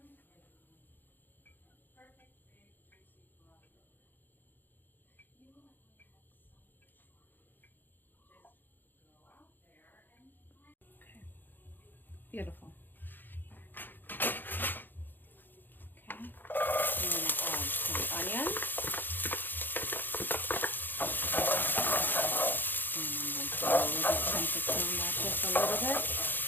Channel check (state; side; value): late; right; 0.092 ms